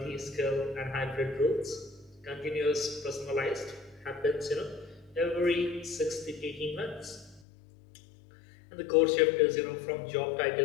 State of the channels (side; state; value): right; drops out; at 7.4 s